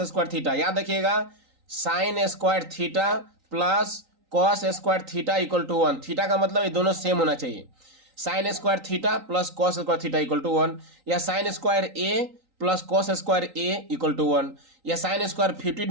याद रखिएगा, sin² plus cos² equal to 1। Theta का मतलब ये दोनों सेम होना चाहिए। sin² plus cos² equal to 1, या sin² plus cos² equal to 1, या sin² 50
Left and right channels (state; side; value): late; left; 3.9 ms